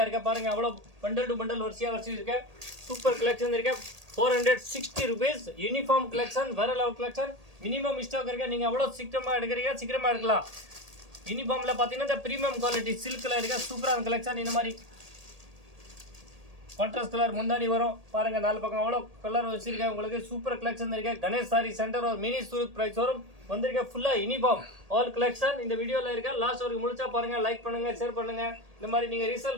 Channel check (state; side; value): late; left; 1.8 ms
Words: இருக்க பாருங்க அவ்வளவு பண்டல் டு பண்டல் வரிசையா இருக்கு சூப்பர் கலெக்ஷன் இருக்கு 460 rupees யூனிஃபார்ம் கலெக்ஷன் வேற லெவல் கலெக்ஷன் மினிமம் ஸ்டாக் இருக்கு நீங்க அவ்வளவு சீக்கிரமா எடுக்கலாம் யூனிஃபார்ம்ல பாத்தீங்கன்னா இந்த பிரீமியம் குவாலிட்டி சில்க்ல இருக்க சூப்பரான கலெக்ஷன் இந்த மாதிரி கான்ட்ராஸ்ட் கலர் முந்தானி வரும் பாருங்க நாலு பக்கம் அவ்வளோ கலர் வச்சிருக்கேன் உங்களுக்கு சூப்பர் கலெக்ஷன் இருக்கு கணேஷ் சாரி சென்டர் ஒரு மினி சூரத் பிரைஸ் வரும் வந்திருக்க ஃபுல்லா யூனிஃபார்ம் ஆல் கலெக்ஷன் இந்த வீடியோல இருக்க லாஸ்ட் வரைக்கும் முடிச்சா பாருங்க லைக் பண்ணுங்க ஷேர் பண்ணுங்க இந்த மாதிரி நீங்க